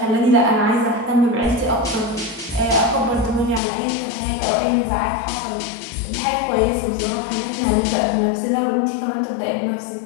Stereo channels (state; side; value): drops out; right; at 3.6 s